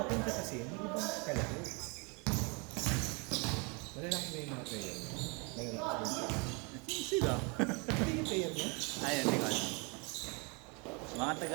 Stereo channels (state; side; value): quieter; left; 31.6 dB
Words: kasi, hindi ba kalaro? Malalaki na yung mga player. Malalaki Sila. Hindi yung player niya? Ayun, hindi ko alam. Mga